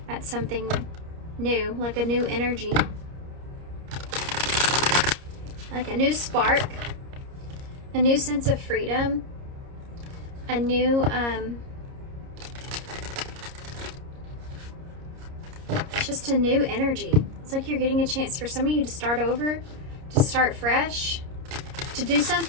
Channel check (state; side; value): late; left; 30 ms